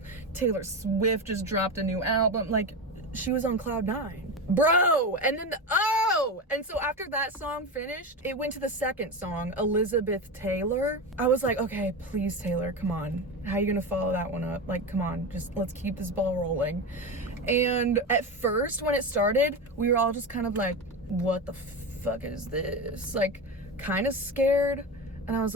Taylor Swift just dropped a new album. Like, she was on cloud nine. Bro! And then and so after that song finished, it went to the second song, Elizabeth Taylor. I was like, okay, please, Taylor, come on. How are you gonna follow that one up? Like, come on, just let's keep this ball rolling. And at first, when it started, we were all just kind of like, what the fuck is this? Like, kind of scared. And I was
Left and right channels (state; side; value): normal; both; correlation 0.20